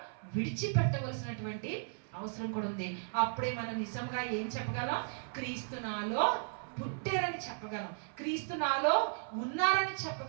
విడిచిపెట్టవలసినటువంటి అవసరం కూడా ఉంది. అప్పుడే మనం నిజంగా ఏం చెప్పగలం? క్రీస్తు నాలో పుట్టారని చెప్పగలం, క్రీస్తు నాలో ఉన్నారని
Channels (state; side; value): silent; left; 54 dB below the other